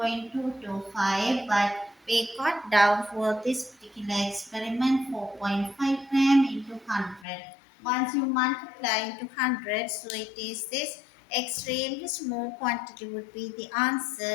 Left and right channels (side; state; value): right; drops out; at 7.2 s